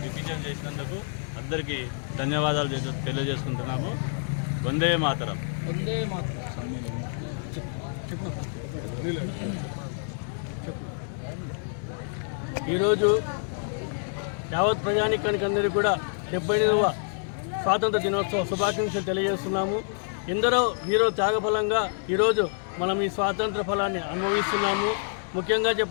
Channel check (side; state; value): right; silent; 60 dB below the other